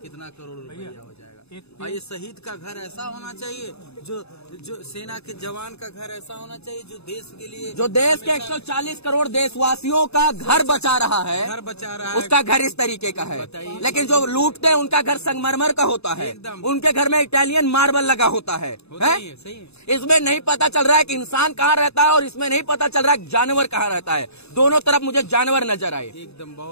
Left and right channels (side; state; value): right; late; 0.79 ms